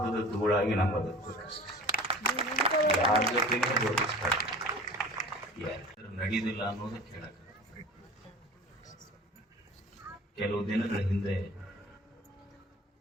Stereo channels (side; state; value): both; normal; correlation 0.41